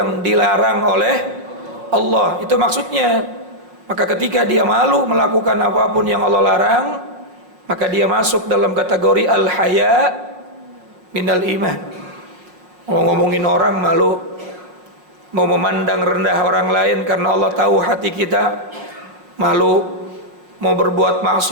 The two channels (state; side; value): late; left; 5.5 ms